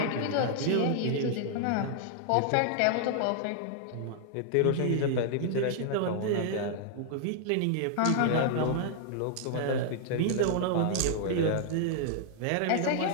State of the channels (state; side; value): different; both; correlation 0.00